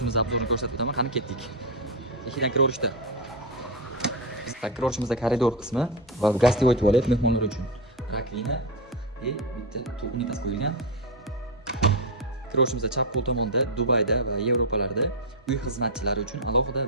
obzorini ko'rsatib o'taman. Qani ketdik. Ikkidan kiraverishda. Biz kiraverishimizda koridor qismi va gostivoy tualet mehmonlar uchun. Rakvina bitta unitas qo'yilgan. Kiraverishimizda chap qo'l tomonda Dubayda va Yevropalarda uy xizmatchilari uchun alohida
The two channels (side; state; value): both; normal; correlation 0.08